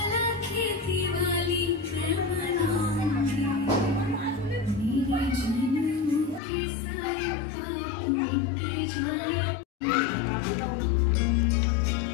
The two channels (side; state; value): right; drops out; at 6.4 s